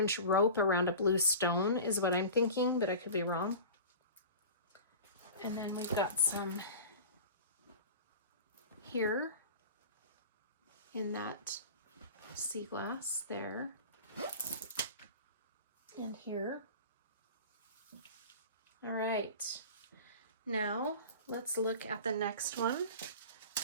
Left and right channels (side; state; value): both; inverted; correlation -0.36